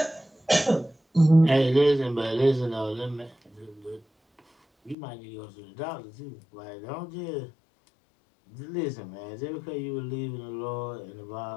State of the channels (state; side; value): drops out; right; at 5.0 s